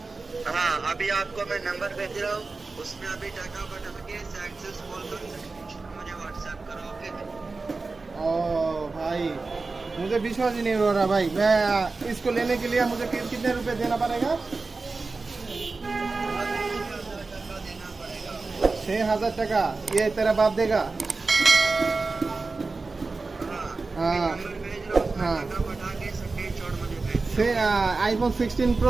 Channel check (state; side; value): quieter; left; 3.8 dB